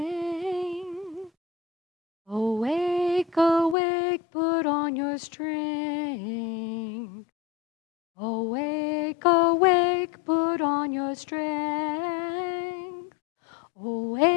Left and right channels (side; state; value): right; drops out; at 3.8 s